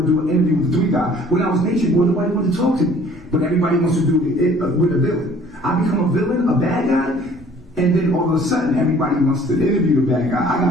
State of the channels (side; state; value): both; normal; correlation 0.54